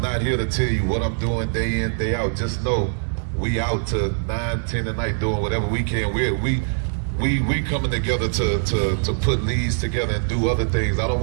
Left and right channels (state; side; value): silent; left; digital silence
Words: not here to tell you what I'm doing day in, day out. Just know we out to 9, 10 at night doing whatever we can. We coming together to put leads together and do other things. I don't